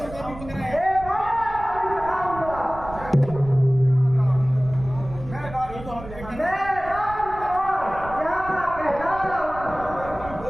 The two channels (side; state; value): right; noise; rumble, 14 dB below the sound